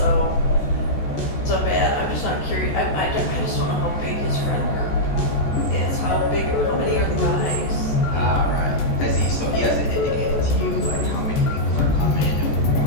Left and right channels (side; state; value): right; late; 14 ms